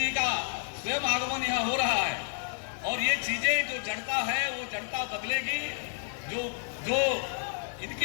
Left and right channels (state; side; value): silent; right; digital silence